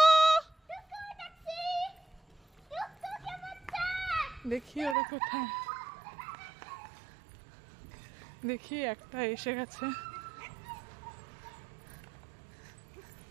দেখি ওরা কোথায়, দেখি একটা এসে গেছে।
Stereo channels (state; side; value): drops out; left; at 5.0 s